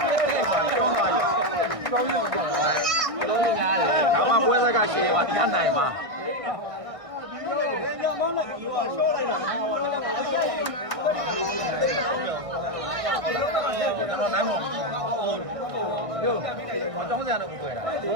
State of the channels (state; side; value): late; left; 1.6 ms